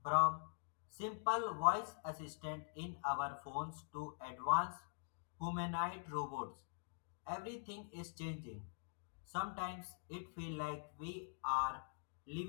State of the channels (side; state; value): right; silent; digital silence